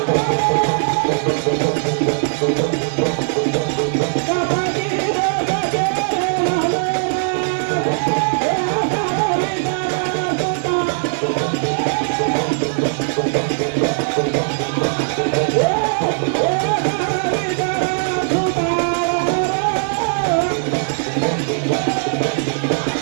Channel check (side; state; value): left; silent; 67 dB below the other